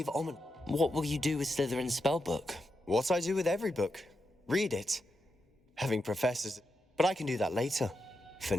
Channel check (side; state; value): both; normal; correlation 0.86